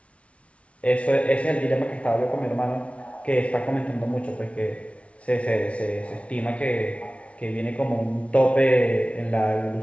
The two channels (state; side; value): late; right; 0.062 ms